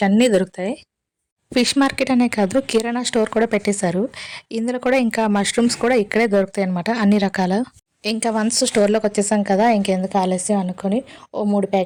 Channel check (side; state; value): both; identical; correlation 1.00